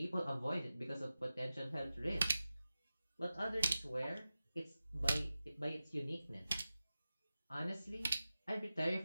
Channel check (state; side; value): inverted; both; correlation -0.94